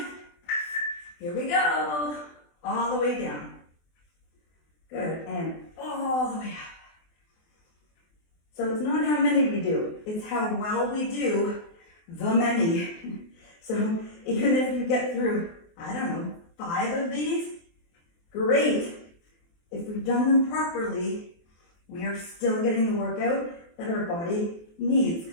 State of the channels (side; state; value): right; late; 24 ms